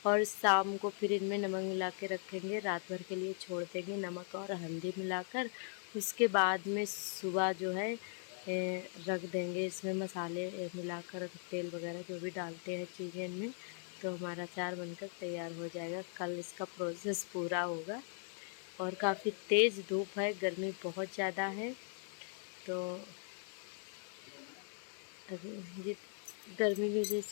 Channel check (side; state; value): right; silent; 52 dB below the other